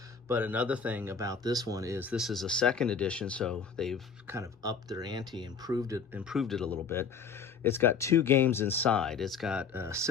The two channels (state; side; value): quieter; right; 5.9 dB